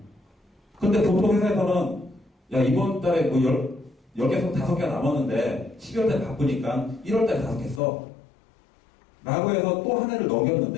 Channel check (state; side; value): drops out; right; at 7.8 s